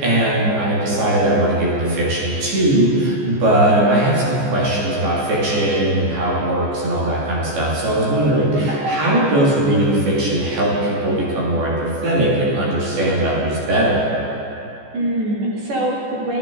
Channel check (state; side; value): late; left; 14 ms